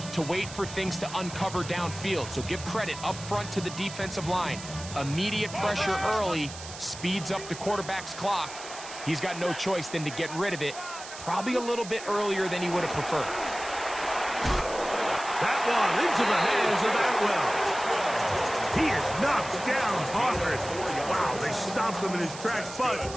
to wait for things to uncover downfield. So give credit up front to the defensive line. Immediate pressure early speeds up the quarterback's clock. He's got no choice than to get rid of it, probably a little bit earlier than he would have preferred. That one into the hands of Atwell. He is knocked down hard. Wow, they stopped him in his tracks, but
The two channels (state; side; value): noise; right; hiss, 12 dB below the sound